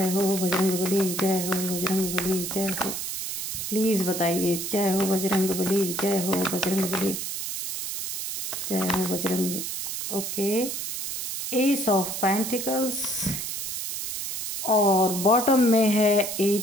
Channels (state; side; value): noise; right; hiss, 4 dB below the sound